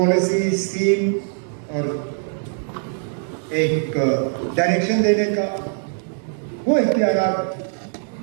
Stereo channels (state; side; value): silent; left; 64 dB below the other